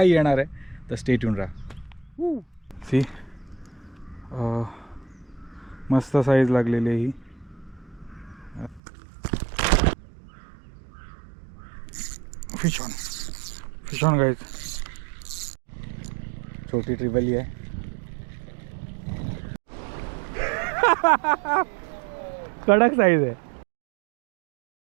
येणार आहे. तर स्टे ट्यून राहा. सी मस्त साईज लागलेली आहे ही. Fish on guys. छोटी ट्रिबली आहे. कडक साईज आहे.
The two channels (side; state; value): left; drops out; at 8.8 s